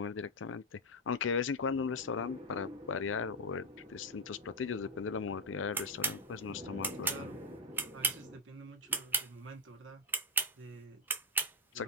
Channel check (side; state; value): both; normal; correlation 0.05